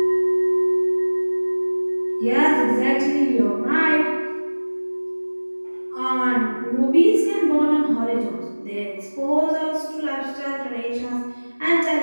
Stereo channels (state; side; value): inverted; both; correlation -1.00